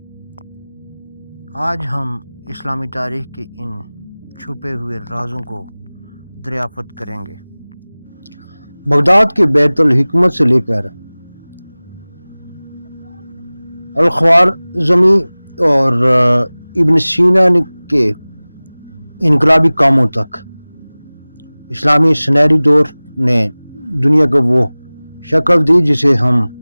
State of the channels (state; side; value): inverted; both; correlation -1.00